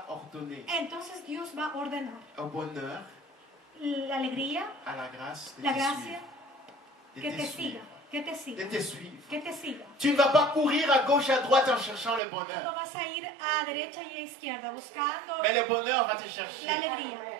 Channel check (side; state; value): left; drops out; at 12.2 s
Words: ordonner entonces Dios va a ordenar au bonheur, la alegría, à la grâce de la te gracia, suivre, de que te te suivre. siga, que te de siga, te suivre. que te siga. Tu ne vas pas courir à gauche, à droite en cherchant le No bonheur. vas a ir a derecha y a izquierda buscando Mais le bonheur va te chercher la alegría.